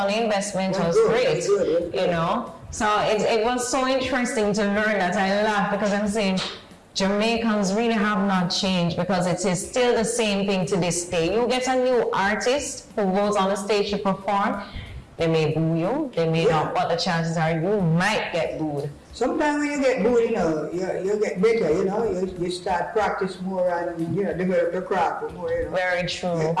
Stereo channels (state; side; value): identical; both; correlation 1.00